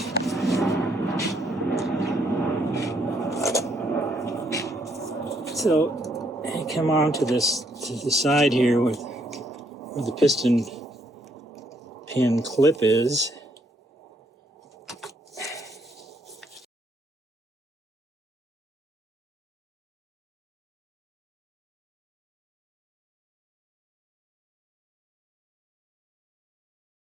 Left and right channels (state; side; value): normal; both; correlation 0.71